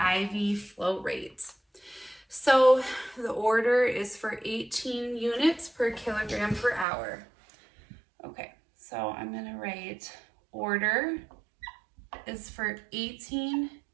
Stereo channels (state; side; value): drops out; left; at 6.9 s